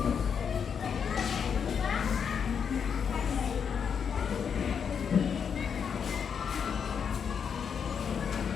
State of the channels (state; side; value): quieter; right; 7.0 dB